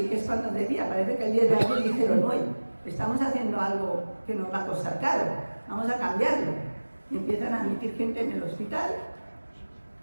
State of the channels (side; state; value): both; inverted; correlation -1.00